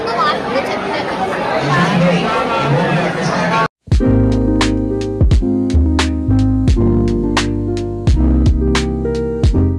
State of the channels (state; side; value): identical; both; correlation 1.00